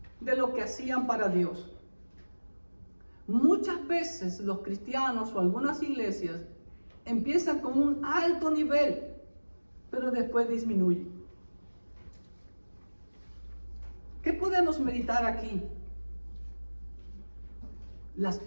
de lo que hacían para Dios. Muchas veces los cristianos o algunas iglesias empiezan con un alto nivel, pero después disminuyen. ¿Qué podemos meditar aquí? Las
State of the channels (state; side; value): inverted; both; correlation -1.00